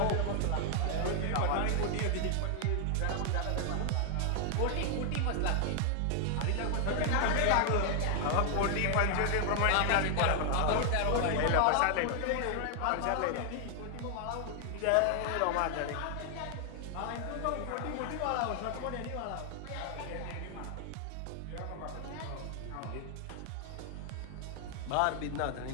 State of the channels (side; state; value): both; different; correlation 0.00